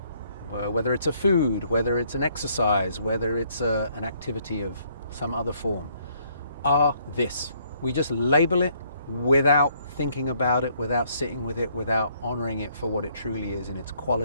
whether it's a food, whether it's an exercise, whether it's an activity of some other form, are this. We just label it without thinking about it, without sitting with it, without honoring it for what it truly is in its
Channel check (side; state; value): both; inverted; correlation -0.67